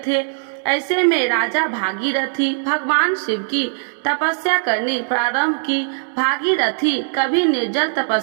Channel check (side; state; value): left; silent; digital silence